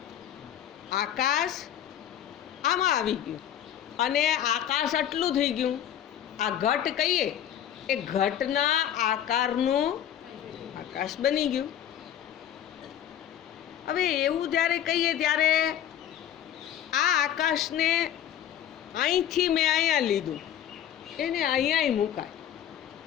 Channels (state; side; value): quieter; right; 10.5 dB